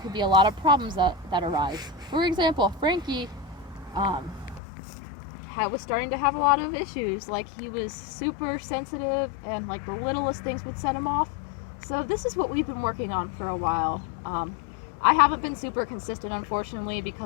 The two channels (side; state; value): right; drops out; at 4.6 s